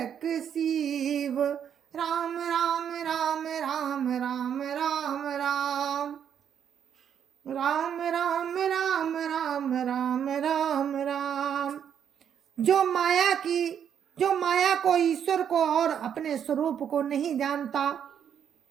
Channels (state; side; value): quieter; left; 8.6 dB